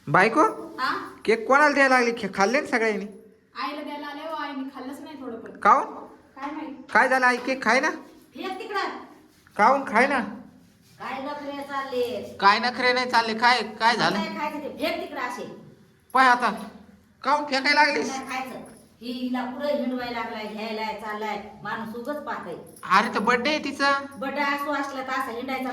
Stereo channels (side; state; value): both; identical; correlation 1.00